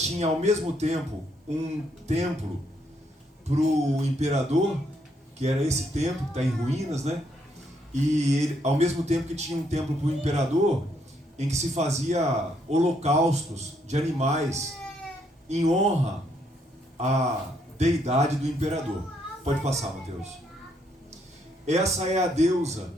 ao mesmo tempo um templo para o imperador, que era esse templo que está em ruínas, E ele, ao mesmo tempo que tinha um templo para o imperador, em que se fazia holocaustos de animais em honra à deidade do imperador. Pode passar, Mateus. Essa é a deusa,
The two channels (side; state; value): both; normal; correlation 0.73